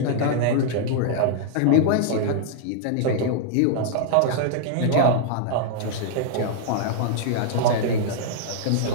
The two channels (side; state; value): both; different; correlation -0.01